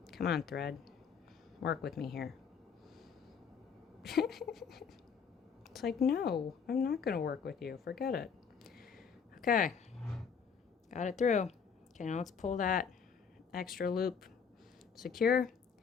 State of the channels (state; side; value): quieter; right; 6.3 dB